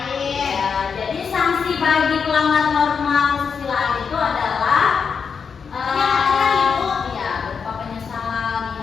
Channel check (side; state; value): right; quieter; 6.0 dB